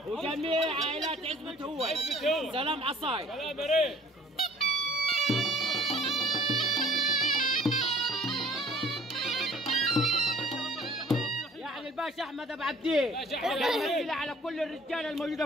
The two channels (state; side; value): normal; both; correlation 0.53